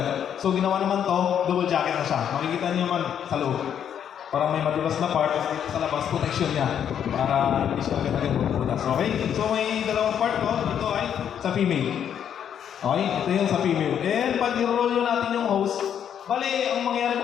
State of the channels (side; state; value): right; quieter; 8.9 dB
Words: So ginawa naman to, double jacket na siya. Makikita niyo naman sa loob. Parang may madulas na part, tapos dito sa labas, protection niya. Para hindi siya agad-agad mabubutas. Okay? So may dalawang part ko. Ito ay sa female. Okay, ito yung sa female. And pag i-roll nyo natin yung hose, bali, ang mangyayari